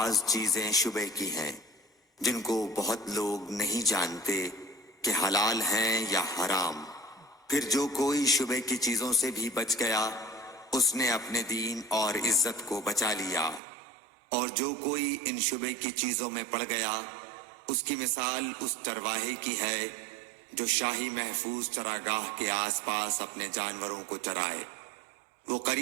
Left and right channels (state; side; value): drops out; left; at 13.6 s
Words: چیزیں شبہ کی ہیں جن کو بہت لوگ نہیں جانتے کہ حلال ہیں یا حرام۔ پھر جو کوئی شبہ کی چیزوں سے بھی بچ گیا اس نے اپنے دین اور عزت کو بچا لیا، اور جو کوئی ان شبہ کی چیزوں میں پڑ گیا اس کی مثال اس چرواہے کی ہے جو شاہی محفوظ چراگاہ کے آس پاس اپنے جانوروں کو چرائے۔ وہ